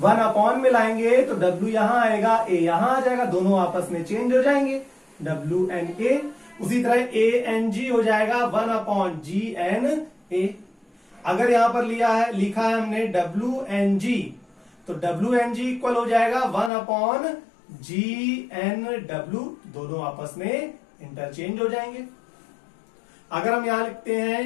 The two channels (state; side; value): drops out; right; at 16.7 s